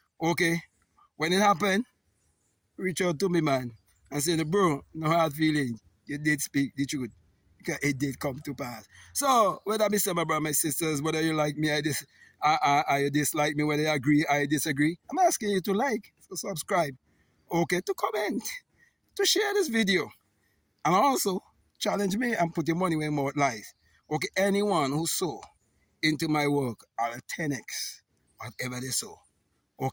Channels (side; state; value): both; identical; correlation 1.00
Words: Okay? When it happened, reach out to me, man, and say, bro, no hard feelings. You did speak the truth. Because it did come to pass. So, whether I say my brother, my sisters, whether you like me, I dislike me, whether you agree, I disagree, I'm asking you to like, to subscribe, okay, to comment, to share this video, and also challenge me and put your money where more lies. Okay, anyone who sow into my work, I'll 10x whatever they sow,